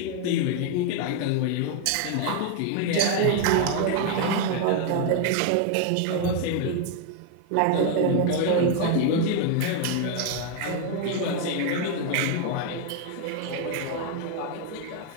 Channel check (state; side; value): different; both; correlation 0.00